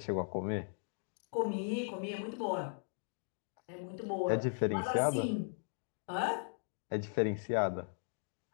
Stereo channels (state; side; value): silent; right; digital silence